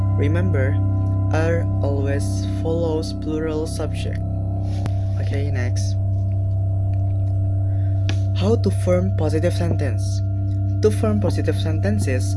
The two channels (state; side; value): identical; both; correlation 1.00